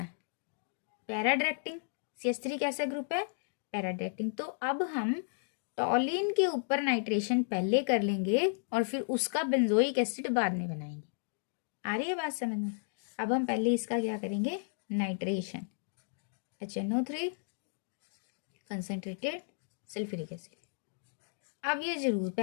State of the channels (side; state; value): right; silent; digital silence